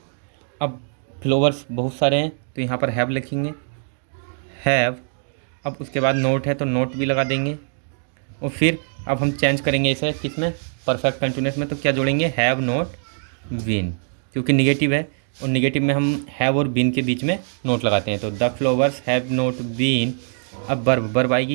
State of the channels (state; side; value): silent; left; digital silence